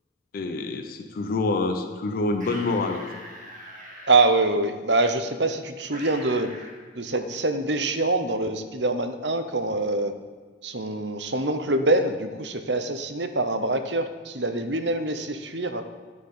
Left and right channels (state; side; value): normal; both; correlation -0.18